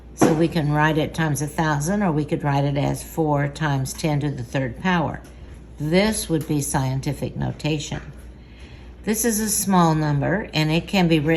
So we can write it times 1,000, or we could write it as 4 times 10 to the third power. This would be scientific notation. This is a small number, and it can be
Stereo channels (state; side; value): identical; both; correlation 1.00